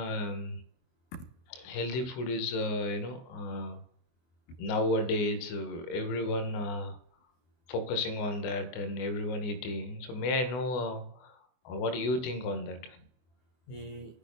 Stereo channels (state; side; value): late; right; 24 ms